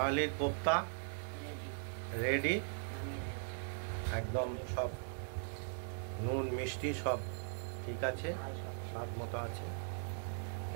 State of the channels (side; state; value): left; silent; digital silence